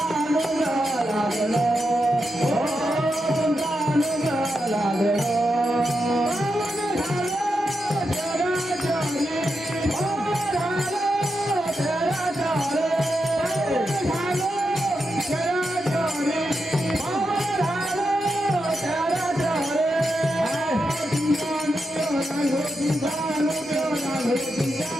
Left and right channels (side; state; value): both; normal; correlation 0.86